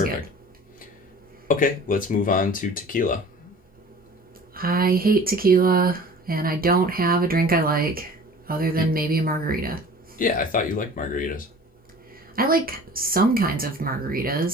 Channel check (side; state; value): both; normal; correlation 0.44